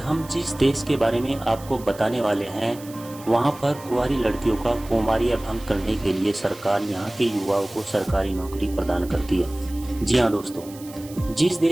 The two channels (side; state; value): right; noise; hiss, 19 dB below the sound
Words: जिस देश के बारे में आपको बताने वाले हैं, वहां पर कुंवारी लड़कियों का कौमार्य भंग करने के लिए सरकार यहां के युवाओं को सरकारी नौकरी प्रदान करती है। जी हाँ दोस्तों, जिस